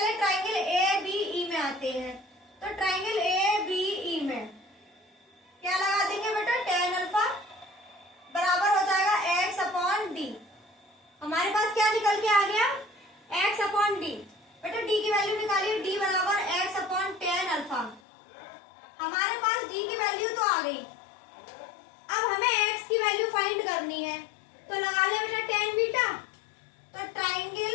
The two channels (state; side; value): drops out; right; at 18.0 s